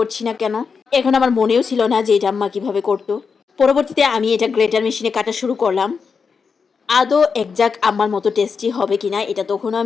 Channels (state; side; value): quieter; right; 5.5 dB